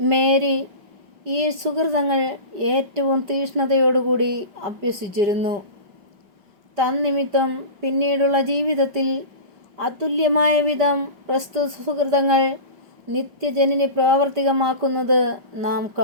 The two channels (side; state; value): left; late; 5.3 ms